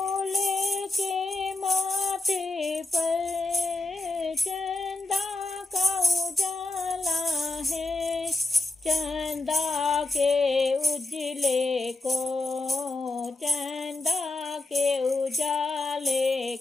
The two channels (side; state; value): right; quieter; 3.1 dB